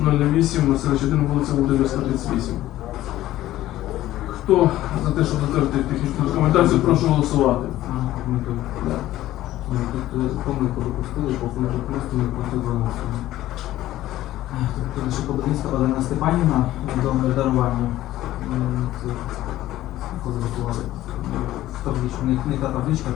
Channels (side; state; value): right; quieter; 14.7 dB